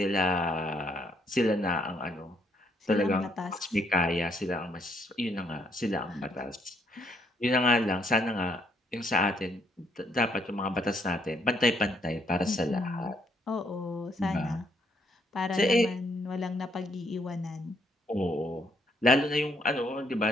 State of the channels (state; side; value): normal; both; correlation 0.70